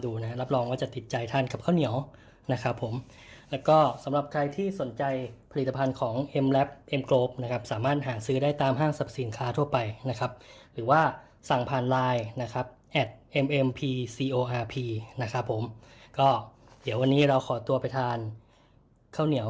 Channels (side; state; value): both; identical; correlation 1.00